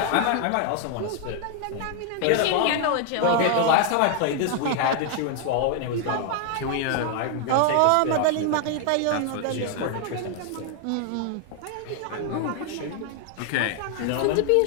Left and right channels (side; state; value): both; different; correlation 0.00